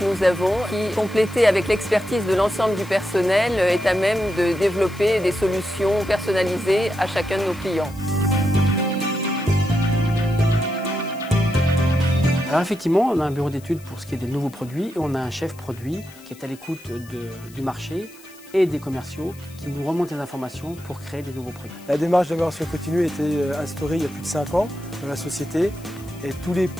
nous avons, qui, complétée avec l'expertise de l'ensemble du personnel, est à même de développer des solutions personnalisées à chacun de nos clients. Alors effectivement, on a un bureau d'études pour ce qui est des nouveaux produits et on a un chef produit qui est à l'écoute du marché et des commerciaux qui nous remontent les informations pour créer des nouveaux produits. La démarche d'amélioration continue a été instaurée il y a plus de 5 ans dans la société et tous les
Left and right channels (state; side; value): noise; left; hiss, 23 dB below the sound